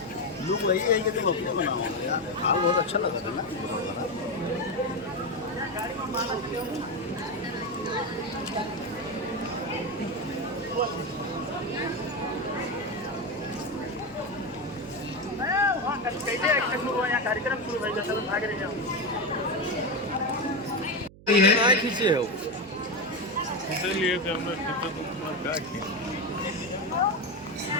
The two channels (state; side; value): noise; right; hum, 21 dB below the sound